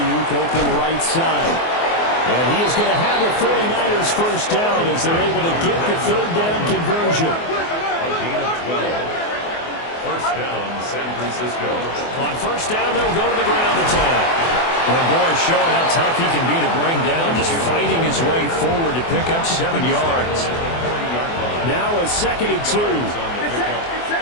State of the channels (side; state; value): right; late; 24 ms